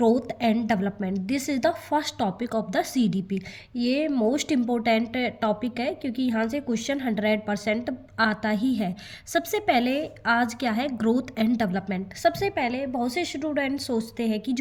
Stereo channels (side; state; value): both; identical; correlation 1.00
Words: and development. This is the first topic of the CDP. ये मोस्ट इम्पोर्टेंट टॉपिक है क्योंकि यहाँ से क्वेश्चन 100% आता ही है। सबसे पहले आज क्या है, ग्रोथ एंड डेवलपमेंट। सबसे पहले बहुत से स्टूडेंट सोचते हैं कि